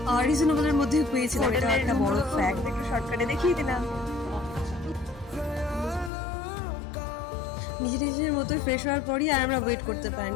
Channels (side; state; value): right; drops out; at 6.1 s